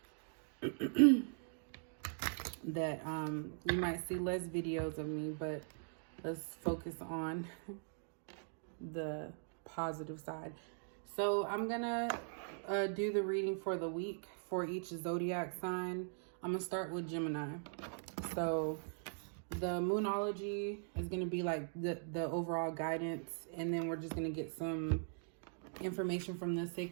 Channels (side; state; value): left; silent; digital silence